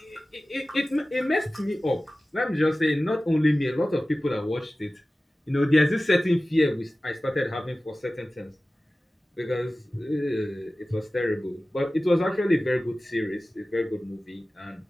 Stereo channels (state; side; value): normal; both; correlation 0.96